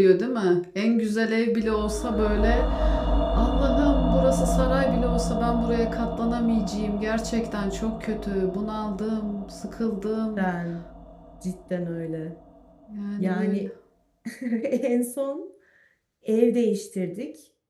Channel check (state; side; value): identical; both; correlation 1.00